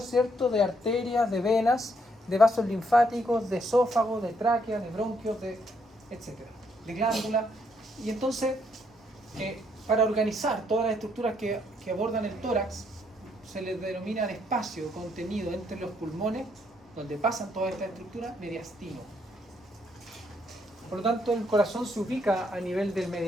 ¿cierto? De arterias, de venas, de vasos linfáticos, de esófago, de tráquea, de bronquios, etc. De glándula. Y entonces, para organizar todas las estructuras que abordan el tórax, se les denomina el espacio contenido entre los pulmones, donde pasan todas estas estructuras, mediastino. Por lo tanto, el corazón se ubica a nivel del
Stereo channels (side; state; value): both; normal; correlation 0.72